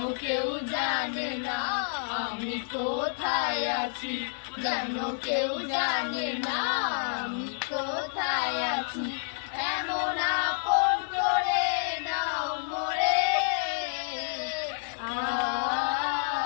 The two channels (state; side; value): silent; right; digital silence